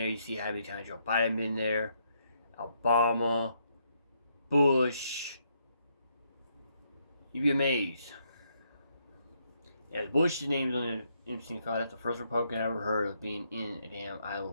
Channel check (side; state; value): both; inverted; correlation -0.75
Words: you see how many times Joe Biden been there, Obama, Bush. You'd be amazed. Yeah, Bush's name's on the Epstein file. That's the first Republican I ever heard of being in a damn